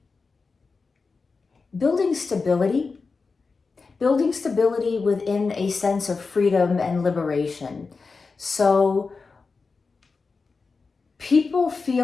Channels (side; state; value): right; quieter; 4.4 dB